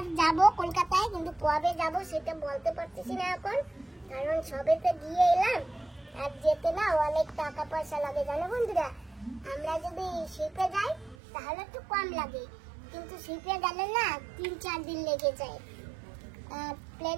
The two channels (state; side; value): drops out; left; at 11.2 s